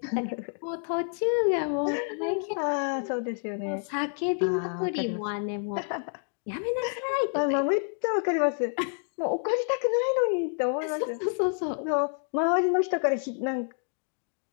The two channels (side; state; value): right; silent; 59 dB below the other